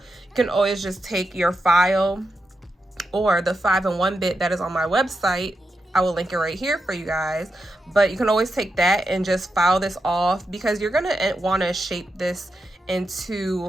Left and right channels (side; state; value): both; normal; correlation 0.87